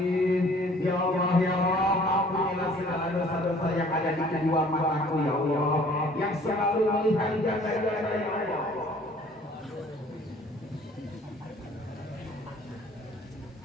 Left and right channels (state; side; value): normal; both; correlation 0.54